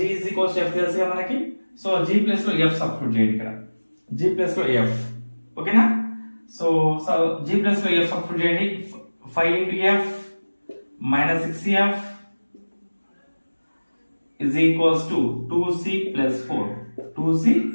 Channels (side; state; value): both; inverted; correlation -1.00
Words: is equals to f తెలుసుగా మనకి. So g plus లో f substitute చేయండి ఇక్కడ. g plus లో f. ఓకేనా? So g plus లో f సబ్స్టిట్యూట్ చేయండి. 5 into f minus 6f is equals to 2c plus 4.